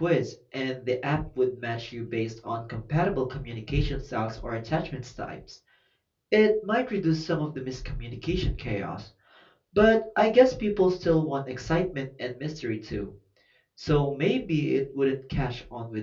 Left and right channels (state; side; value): identical; both; correlation 1.00